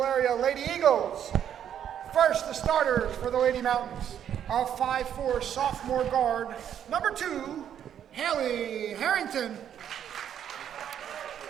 area Lady Eagles. First, the starters for the Lady Mountains. A 5'4" sophomore guard, number 2, Haley Harrington.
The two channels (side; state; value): left; quieter; 9.5 dB